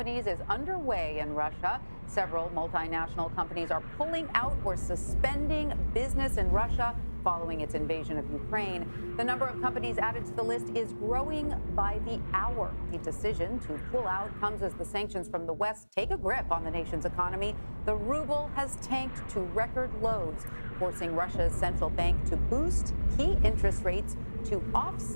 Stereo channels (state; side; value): inverted; both; correlation -1.00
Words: is underway in Russia. Several multinational companies are pulling out or suspending business in Russia following its invasion of Ukraine. The number of companies added to the list is growing by the hour. The decision to pull out comes as the sanctions from the West take a grip on the nation's economy. The ruble has tanked to record lows, forcing Russia's central bank to boost key interest rates to